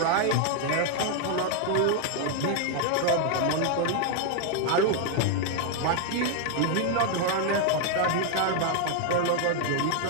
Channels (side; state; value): both; different; correlation 0.00